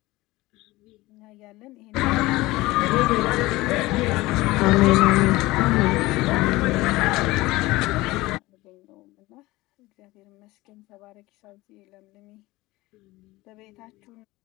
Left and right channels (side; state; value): right; quieter; 19.7 dB